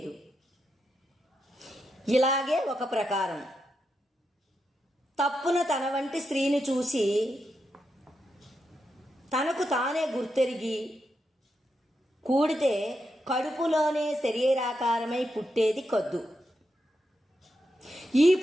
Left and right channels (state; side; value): normal; both; correlation 0.85